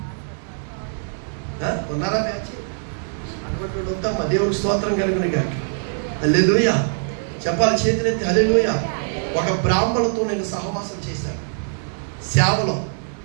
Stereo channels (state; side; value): silent; left; 58 dB below the other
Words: ఉన్నారా బ్యాచ్? అటువంటి వద్దమ్మా. దేవునికి స్తోత్రం కలుగును గాక. హల్లెలూయా. చెప్పాలి, చేతులెత్తి హల్లెలూయా. ఒక బ్రాహ్మణులతో నేను సహవాసం చేశాను, సేవలో